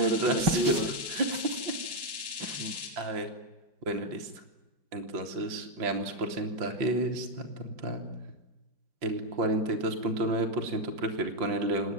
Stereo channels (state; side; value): late; left; 5.2 ms